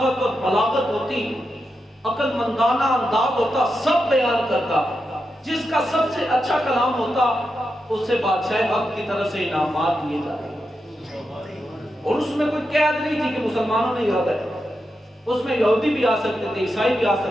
اور بلاغت ہوتی، عقل مندانہ انداز ہوتا، سب بیان کرتا. جس کا سب سے اچھا کلام ہوتا اسے بادشاہ حق کی طرف سے انعامات دیے جاتے. اور اس میں کوئی قید نہیں تھی کہ مسلمانوں نے یاد ہے، اس میں یہودی بھی آ سکتے تھے، عیسائی بھی آ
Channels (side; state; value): both; normal; correlation 0.87